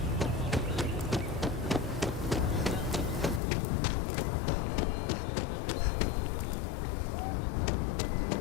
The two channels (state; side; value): drops out; right; at 3.4 s